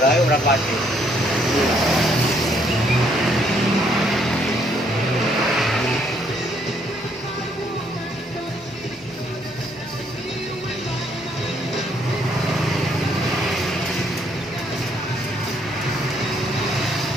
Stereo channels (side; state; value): both; normal; correlation 0.69